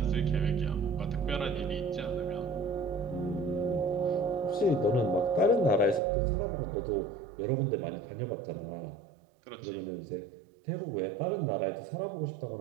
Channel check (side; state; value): left; drops out; at 6.0 s